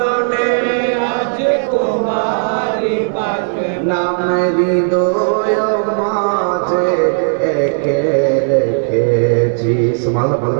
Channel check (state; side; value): silent; left; digital silence